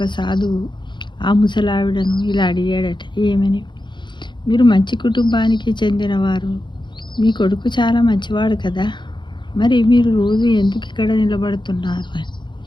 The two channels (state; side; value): late; right; 0.23 ms